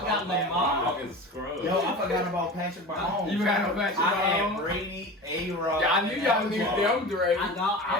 Lamar. Fucking scrub. Yo, I forgot about Patrick Mahomes. You forgot about Patrick I had Mahomes? Brady, A-Rod. Yeah, I knew y'all knew them, Dre. I know.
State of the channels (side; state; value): both; normal; correlation 0.32